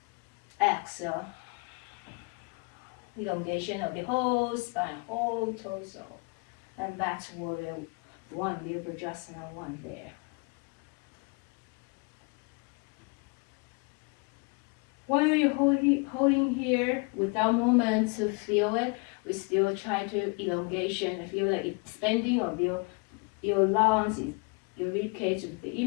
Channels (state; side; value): quieter; right; 30.7 dB